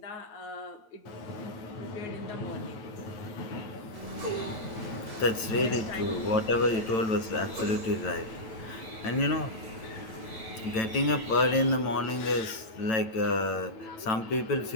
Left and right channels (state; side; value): late; right; 9.0 ms